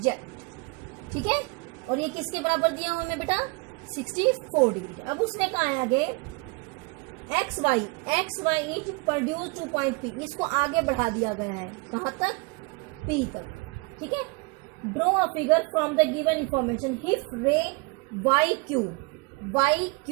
ठीक है। और ये किसके बराबर दिया हुआ हमें बेटा 64 डिग्री। अब उसने कहा है आगे X Y is produce 2 point P, इसको आगे बढ़ा दिया गया है कहां तक पी तक, ठीक है। Draw a figure from the given information if रे वाई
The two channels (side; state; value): left; quieter; 29.1 dB